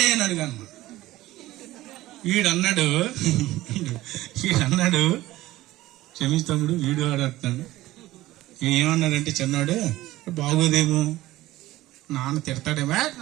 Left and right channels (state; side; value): quieter; left; 16.7 dB